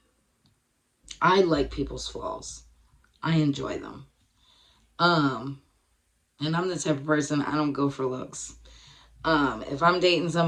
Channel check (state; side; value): identical; both; correlation 1.00